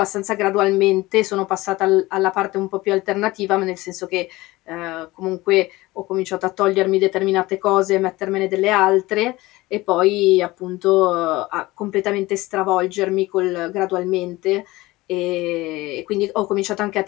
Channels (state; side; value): quieter; right; 19.7 dB